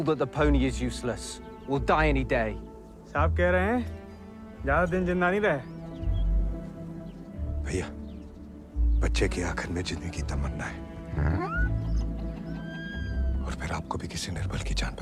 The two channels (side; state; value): both; identical; correlation 1.00